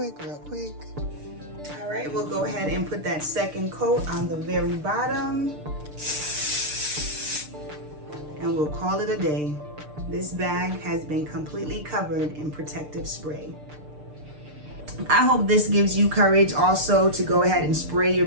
All right, we'll go ahead and put that second coat on the very bottom. And we'll call it a day. This bag has been completely covered in protective spray. I hope this gives you courage also to go ahead and spray your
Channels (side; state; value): left; late; 6.7 ms